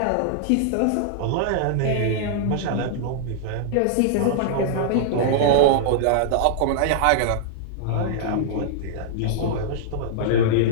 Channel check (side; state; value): both; different; correlation -0.01